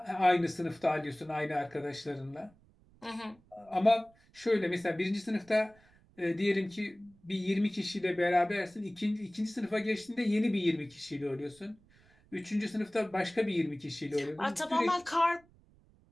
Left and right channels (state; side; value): noise; right; rumble, 29 dB below the sound